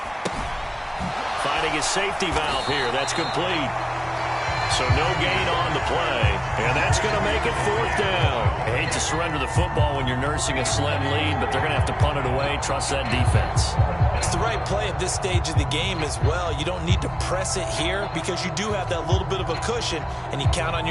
Finding his safety valve here. That's complete. So no gain on the play. And that's going to make it 4th down. I hate to surrender the football when you're nursing a slim lead, but they're going to have to punt it away. Trust that defense. It's the right play at this stage of the game as well. You don't need to press it here because you do have that little bit of a cushion, and you count on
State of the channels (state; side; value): identical; both; correlation 1.00